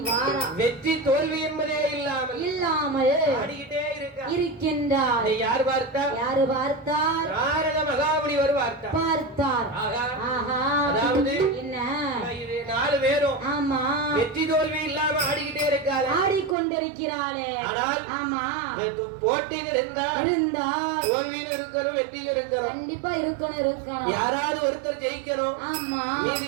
வாரா. வெற்றி தோல்வி என்பதே இல்லாமல் ஆடிக்கிட்டே இருக்கின்றார். யார் பார்த்தார்? யாரு பார்த்தார்? நாரத மகாமுனிவர் பார்த்தார். அதாவது என்ன 4 பேரும் ஆமா வெற்றி தோல்வி இல்லாம ஆடிக்கிட்டே இருக்காரு. ஆடிக்கொண்டிருக்கிறாளே. ஆனால் ஆமா, போட்டின்னு இருந்தா தோல்வியும் இருக்கணும், வெற்றியும் இருக்கணும். கண்டிப்பா இருக்கணும். யாராவது ஒருத்தர் ஜெயிக்கணும். ஆமா, மீதி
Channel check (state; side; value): drops out; left; at 16.6 s